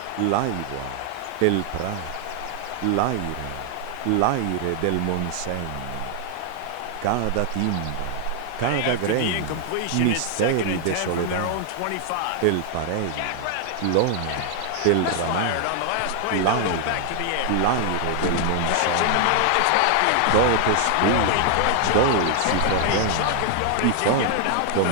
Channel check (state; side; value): different; both; correlation 0.00